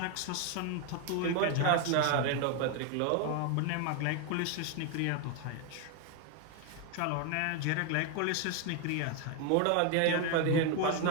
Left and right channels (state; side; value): different; both; correlation 0.01